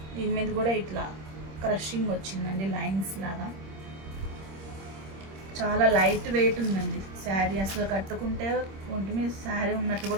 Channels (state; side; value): late; left; 26 ms